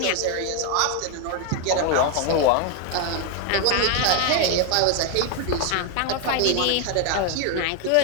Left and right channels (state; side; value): different; both; correlation 0.01